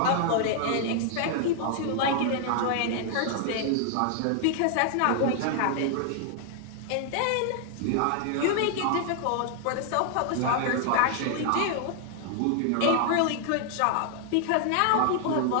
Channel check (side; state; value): both; different; correlation 0.00